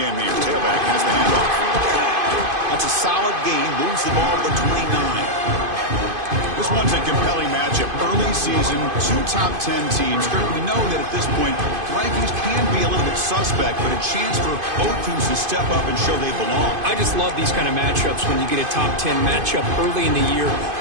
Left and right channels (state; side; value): late; left; 2.5 ms